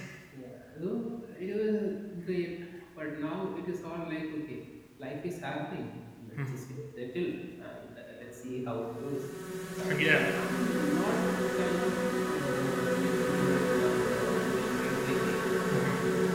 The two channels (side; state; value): both; identical; correlation 1.00